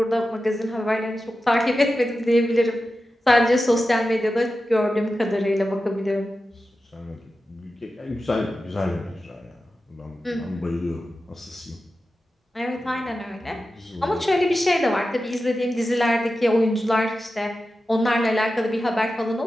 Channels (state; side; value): normal; both; correlation 0.92